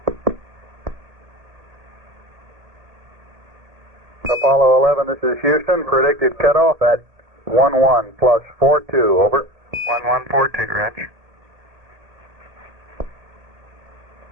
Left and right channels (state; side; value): late; left; 1.8 ms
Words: Apollo 11, this is Houston. Predicted cutoff at 11 plus 42. Over. 1142, Roger.